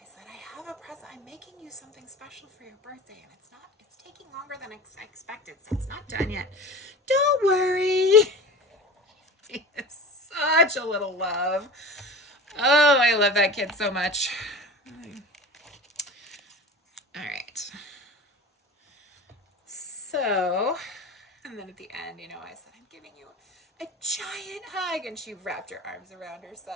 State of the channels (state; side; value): normal; both; correlation 0.34